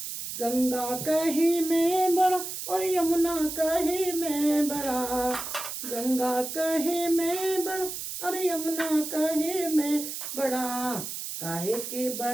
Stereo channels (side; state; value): right; noise; hiss, 7 dB below the sound